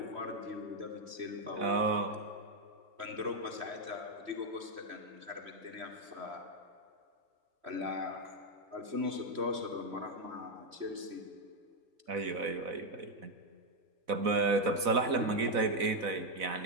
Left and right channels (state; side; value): late; left; 4.0 ms